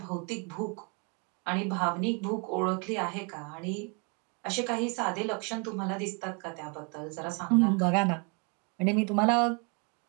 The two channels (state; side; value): quieter; left; 34.7 dB